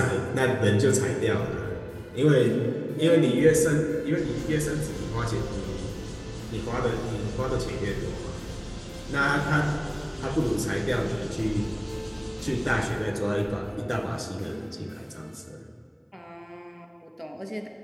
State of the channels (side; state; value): both; identical; correlation 1.00